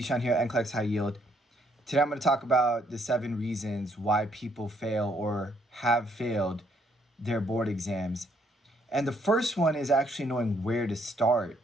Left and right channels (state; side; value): normal; both; correlation 0.70